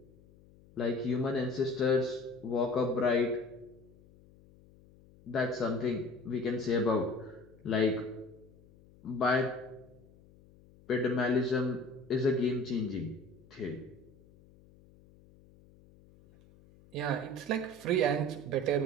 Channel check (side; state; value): left; noise; hum, 25 dB below the sound